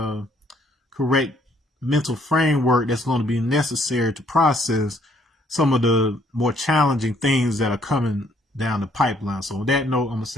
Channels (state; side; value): normal; both; correlation 0.66